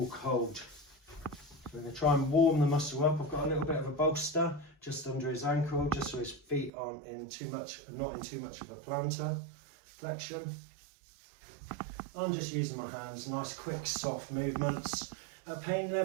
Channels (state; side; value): drops out; left; at 6.7 s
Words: cold. We're going to try and warm the muscle up. I've got a little bit of a bolster just under his ankle, just so his feet aren't in too much, not in too much of a plantar flexion. I'm just using my hands, nice quick soft movements. At pain